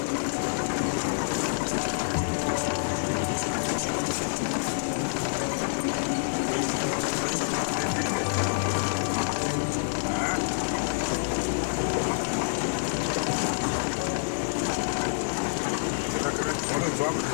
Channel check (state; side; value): silent; right; 60 dB below the other